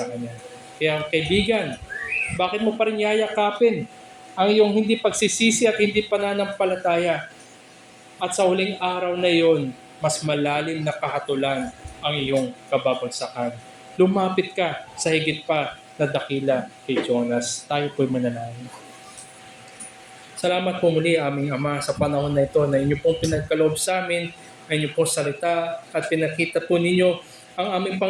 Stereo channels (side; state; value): both; identical; correlation 1.00